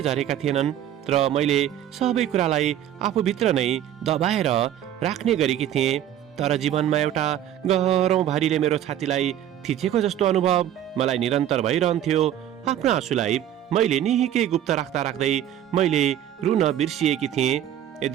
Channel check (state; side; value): quieter; left; 11.2 dB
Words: झरेका थिएनन् र मैले सबै कुरालाई आफूभित्र नै दबाएर राख्ने गरेकी थिएँ। तर जीवनमा एउटा गह्रौँ भारीले मेरो छातीलाई थिचेको जस्तो अनुभव मलाई निरन्तर भइरहन्थ्यो। आफ्नो आँसुलाई मैले निकै गुप्त राख्दा राख्दै मैले रुन बिर्सिएकी थिएँ।